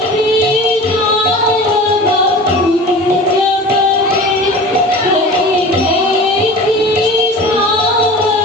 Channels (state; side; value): normal; both; correlation 0.37